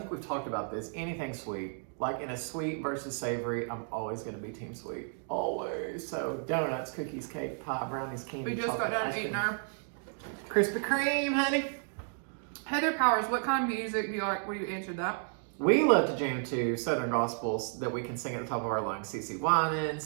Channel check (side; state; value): left; silent; 56 dB below the other